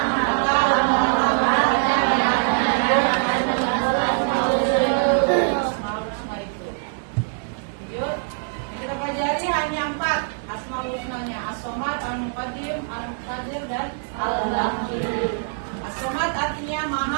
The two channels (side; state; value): left; silent; 63 dB below the other